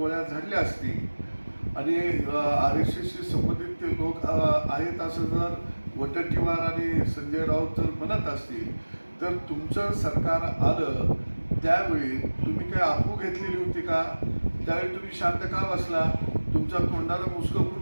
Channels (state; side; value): inverted; both; correlation -1.00